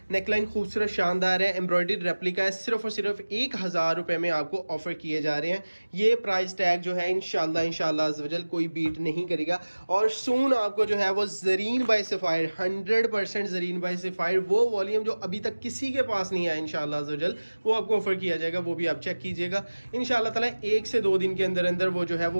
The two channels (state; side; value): inverted; both; correlation -1.00